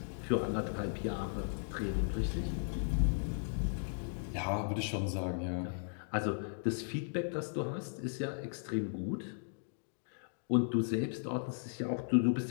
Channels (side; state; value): right; silent; digital silence